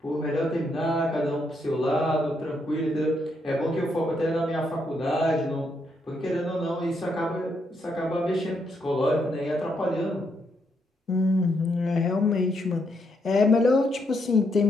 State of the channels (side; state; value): both; normal; correlation 0.77